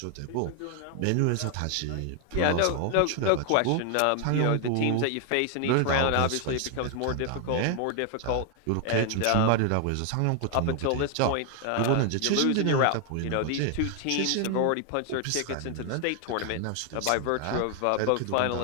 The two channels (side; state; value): both; different; correlation 0.00